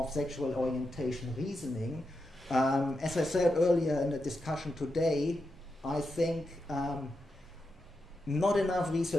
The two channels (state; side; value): normal; both; correlation 0.87